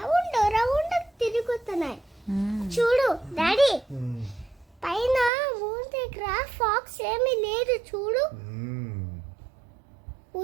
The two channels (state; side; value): drops out; left; at 5.3 s